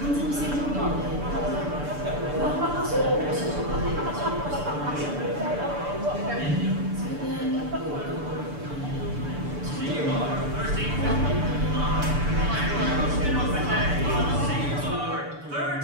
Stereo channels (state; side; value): late; left; 6.9 ms